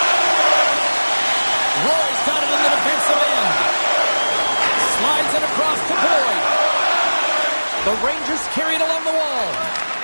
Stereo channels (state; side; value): inverted; both; correlation -1.00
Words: Roy's got it in the defensive end. Slides it across to Boyd. The Rangers carry it along the wall.